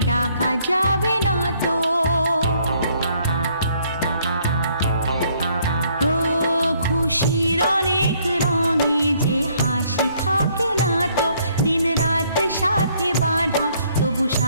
ডাকা যাবে না তো। ও খুশির অনেক রঙে যে হাসি থাকে না তো, দিন রাত সাথে বাঁধা তবু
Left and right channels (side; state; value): both; inverted; correlation -0.66